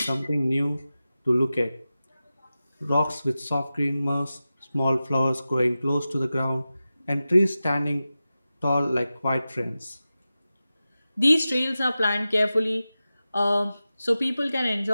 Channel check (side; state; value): both; inverted; correlation -0.94